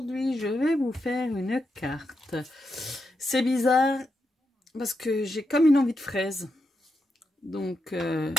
je vais vous faire une carte. C'est bizarre parce que j'ai comme une envie de fraise. Donc,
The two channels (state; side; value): normal; both; correlation 0.85